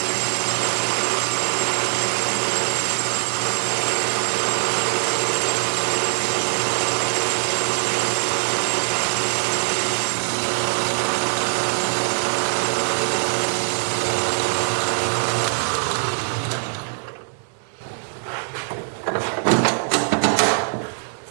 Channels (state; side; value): silent; left; digital silence